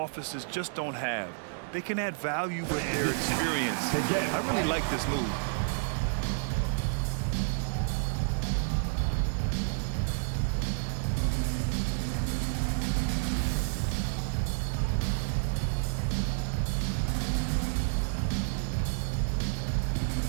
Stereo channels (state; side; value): silent; left; 58 dB below the other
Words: just don't have. They can add value with their experience. I really like this move.